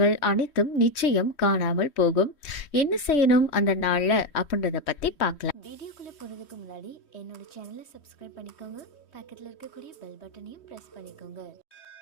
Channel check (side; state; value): right; late; 3.1 ms